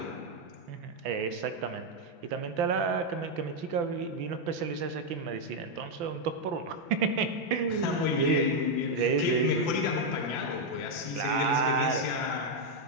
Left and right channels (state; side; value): late; left; 5.9 ms